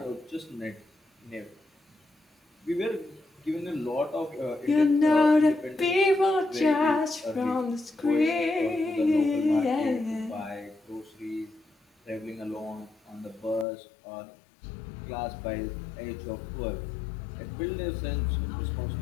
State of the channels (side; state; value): right; drops out; at 13.7 s